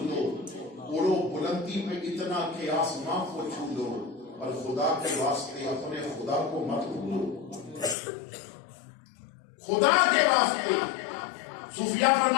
اڑو بلندی پہ اتنا کہ آسماں کو چھو لو، اور خدا کے واسطے اپنے خدا کو مت بھولو۔ خدا کے واسطے صوفیاء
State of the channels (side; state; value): right; drops out; at 8.0 s